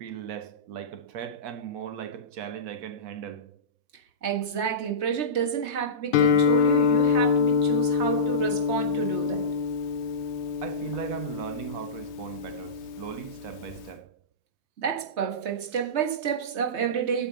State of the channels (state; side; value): late; left; 3.2 ms